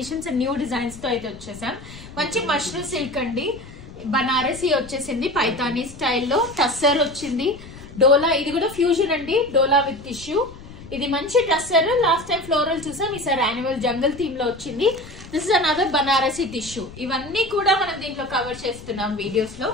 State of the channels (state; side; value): noise; left; rumble, 17 dB below the sound